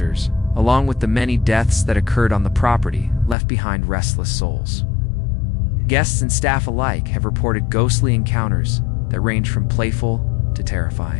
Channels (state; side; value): drops out; right; at 3.4 s